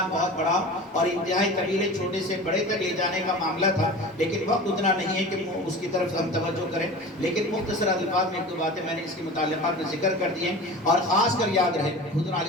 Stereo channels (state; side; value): normal; both; correlation 0.35